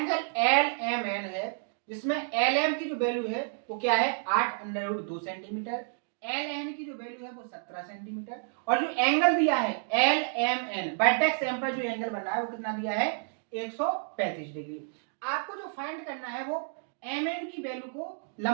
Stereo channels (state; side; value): silent; left; digital silence